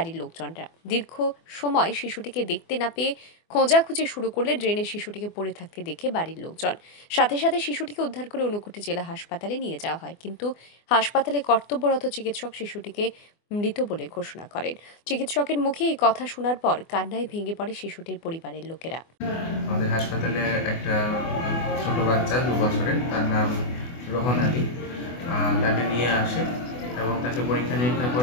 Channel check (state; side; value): late; right; 24 ms